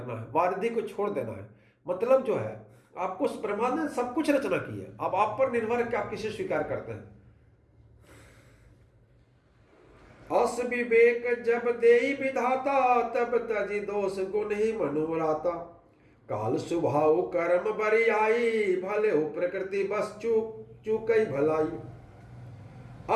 है, वारिधि को छोड़ देना है। मतलब जो है आपको ब्रह्मा ने सब कुछ रचना की है, अब आप पर निर्भर है कि आप किसे स्वीकार करते हैं। अस विवेक जब देई विधाता तब तजी दोष गुण ही मनुराता। काल स्वभाव कर्म बरियाई भले हो प्रकृति बस चूकई भलाई।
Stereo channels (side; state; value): both; identical; correlation 1.00